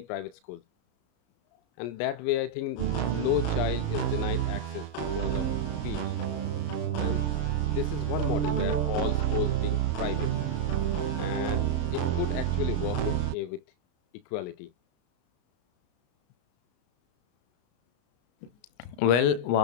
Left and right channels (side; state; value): right; late; 34 ms